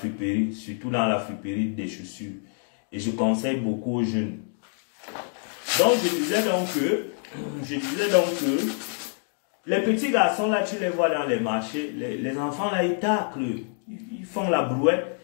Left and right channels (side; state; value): right; silent; 55 dB below the other